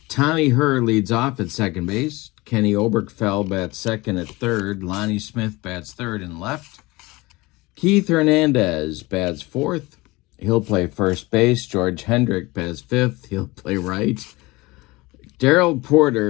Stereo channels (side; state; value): right; quieter; 22.1 dB